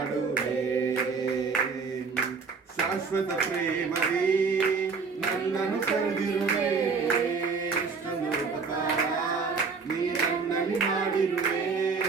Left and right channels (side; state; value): left; quieter; 5.0 dB